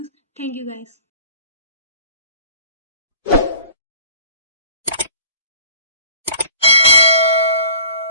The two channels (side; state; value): both; inverted; correlation -0.46